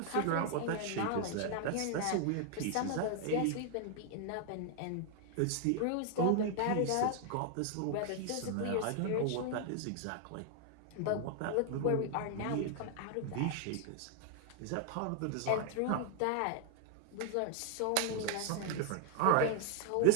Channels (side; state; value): both; different; correlation 0.00